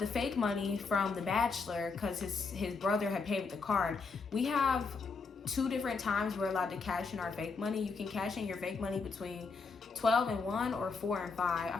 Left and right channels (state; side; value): quieter; right; 4.6 dB